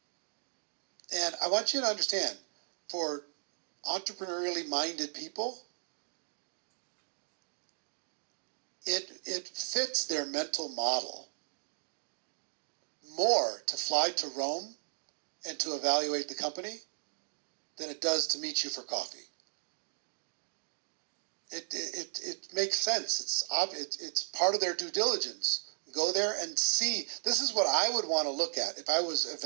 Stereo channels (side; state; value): left; silent; 54 dB below the other